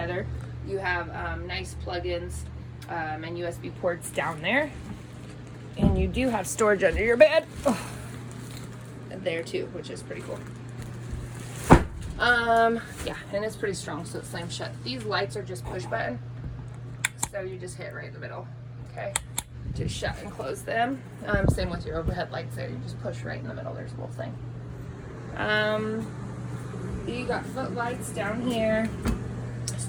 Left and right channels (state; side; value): identical; both; correlation 1.00